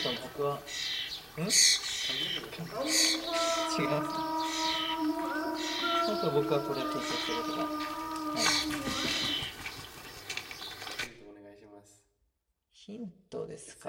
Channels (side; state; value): both; identical; correlation 1.00